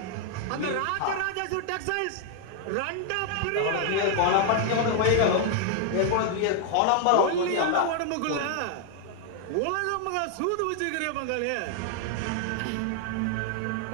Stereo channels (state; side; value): different; both; correlation 0.00